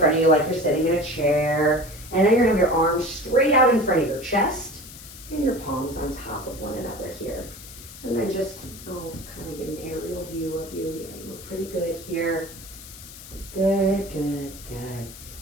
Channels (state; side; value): noise; left; hiss, 16 dB below the sound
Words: of you like you're sitting in a chair. And then you're gonna have your arms straight out in front of your chest and your palms on top of one another here. And then just, kind of get an aerial view of you. Yeah, you look pretty good here. Good, good, good.